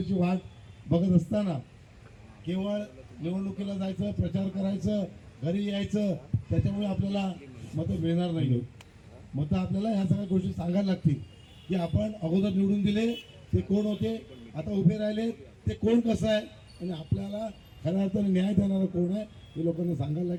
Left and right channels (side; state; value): both; identical; correlation 1.00